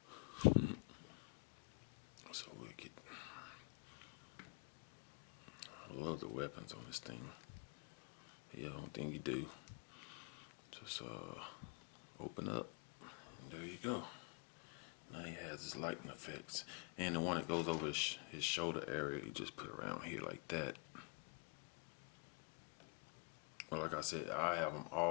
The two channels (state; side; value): quieter; right; 33.2 dB